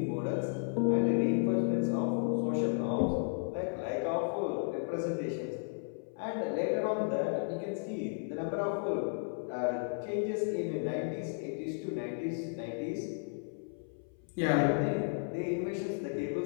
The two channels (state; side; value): silent; right; 55 dB below the other